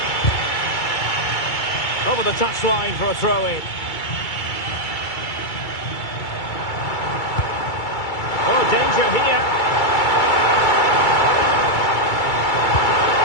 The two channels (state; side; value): late; right; 2.3 ms